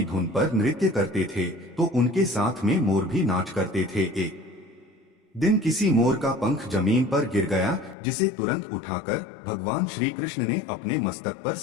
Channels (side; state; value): right; drops out; at 8.0 s